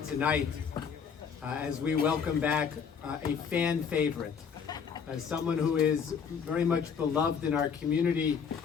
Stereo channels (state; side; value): quieter; right; 6.6 dB